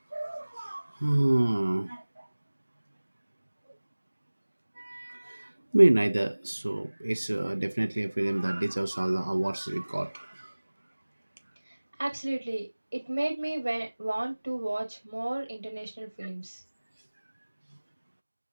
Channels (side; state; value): both; inverted; correlation -1.00